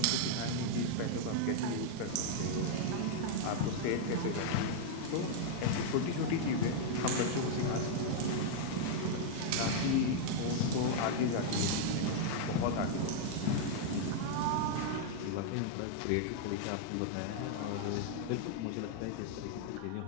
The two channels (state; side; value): different; both; correlation -0.01